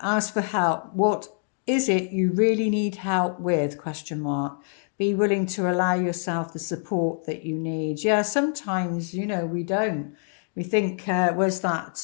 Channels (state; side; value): silent; right; 61 dB below the other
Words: ask for help. What is it you really need help with? Question mark. Be willing to allow yourself the support that you need. Yeah, sometimes, you know, we don't. We think, where's